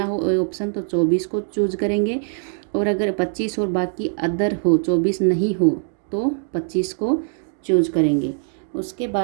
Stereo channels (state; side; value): silent; left; digital silence